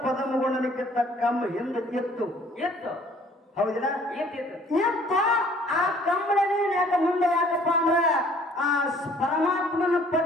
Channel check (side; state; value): both; normal; correlation 0.56